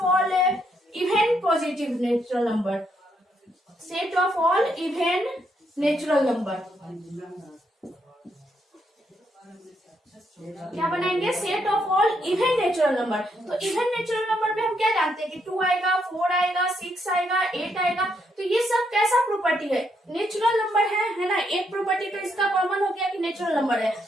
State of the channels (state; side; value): normal; both; correlation 0.76